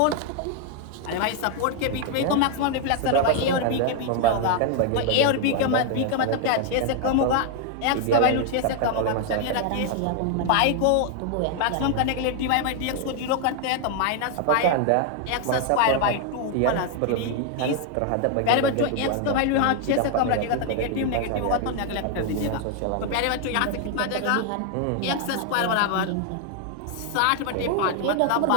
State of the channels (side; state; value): both; different; correlation 0.00